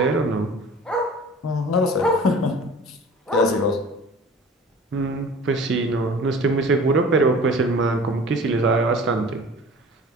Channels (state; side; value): normal; both; correlation 0.43